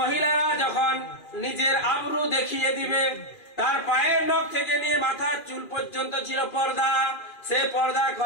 যখন নিজের আবরু দেখিয়ে দিবে, তার পায়ের নখ থেকে নিয়ে মাথার চুল পর্যন্ত ছিল পর্দা, সে পর্দা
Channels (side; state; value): right; late; 2.4 ms